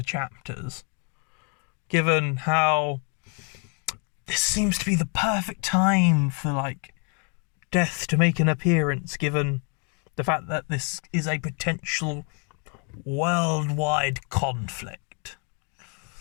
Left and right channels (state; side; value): quieter; right; 38.1 dB